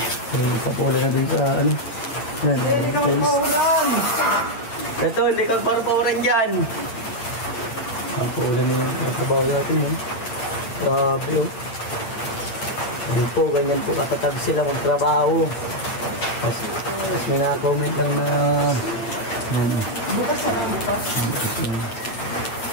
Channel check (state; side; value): late; right; 8.9 ms